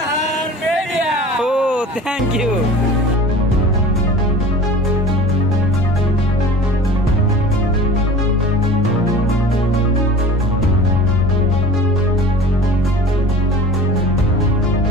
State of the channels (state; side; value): normal; both; correlation 0.40